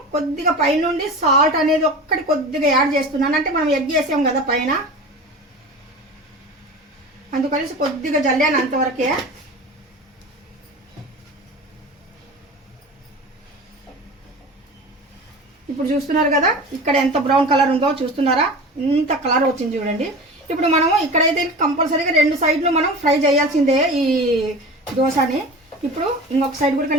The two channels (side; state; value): both; normal; correlation 0.34